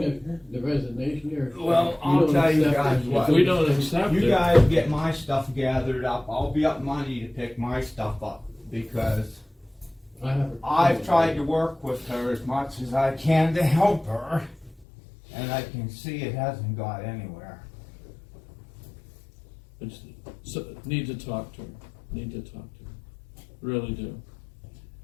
right? the resignation or? Well, I'll don't tell you accept guys it? what. if we don't accept You it, guys get my stuff gathered up. I'll be up Monday to pick my stuff up because I have. I've tried to work with her as much as I can to help her, and I can see it hasn't got anywhere. it's, so, need to talk to her. Need to talk to her. Really do.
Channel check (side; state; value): right; drops out; at 14.9 s